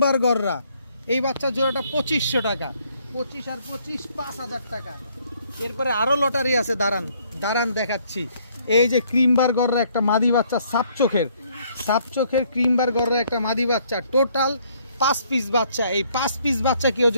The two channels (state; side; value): inverted; both; correlation -0.65